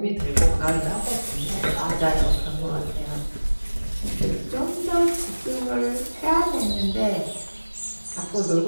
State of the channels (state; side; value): inverted; both; correlation -1.00